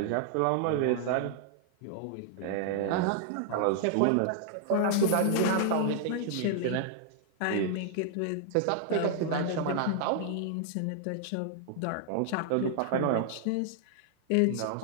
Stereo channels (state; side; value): different; both; correlation -0.01